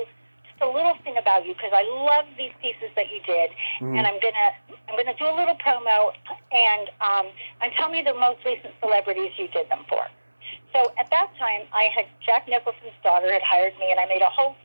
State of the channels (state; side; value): inverted; both; correlation -1.00